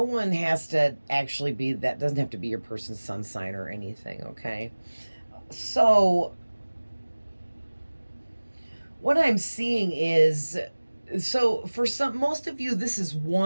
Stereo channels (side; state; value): both; inverted; correlation -1.00